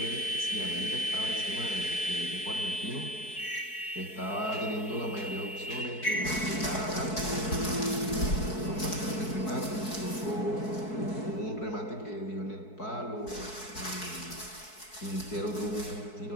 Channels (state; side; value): late; right; 4.6 ms